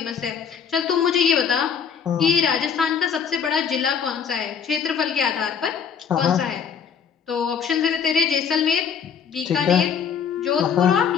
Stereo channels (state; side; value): quieter; right; 7.1 dB